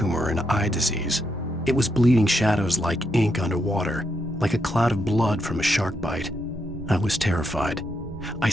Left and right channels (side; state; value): both; normal; correlation 0.80